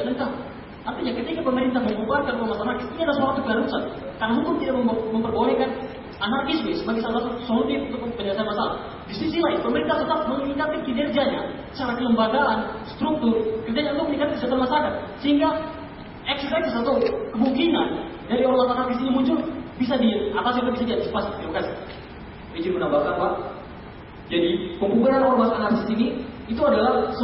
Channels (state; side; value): identical; both; correlation 1.00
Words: lengkap. Artinya ketika pemerintah membubarkan ormas anarkis, ini adalah suatu keharusan. Karena hukum tidak memperbolehkan anarkisme sebagai salah satu solusi untuk penyelesaian masalah. Di sisi lain, pemerintah tetap meningkatkan kinerjanya secara kelembagaan, struktur, kerjanya untuk meningkatkan kesejahteraan masyarakat. Sehingga eksersis atau kemungkinan dari ormas anarkis ini muncul bisa diatasi atau bisa diantisipasi. Terima kasih. Izin menambahkan, Pak. Jadi pembubaran ormas anarkis ini itu adalah